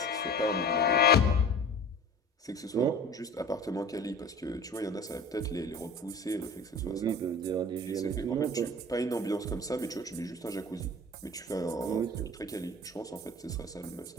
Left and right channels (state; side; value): normal; both; correlation 0.39